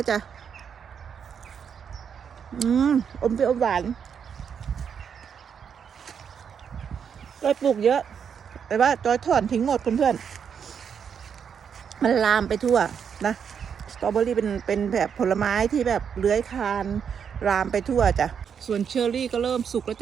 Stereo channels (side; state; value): left; quieter; 7.3 dB